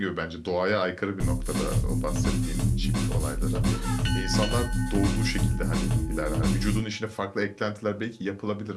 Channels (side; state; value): both; identical; correlation 1.00